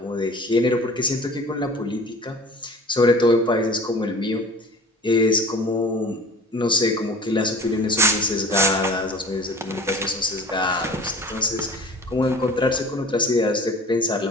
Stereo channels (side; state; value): both; normal; correlation 0.43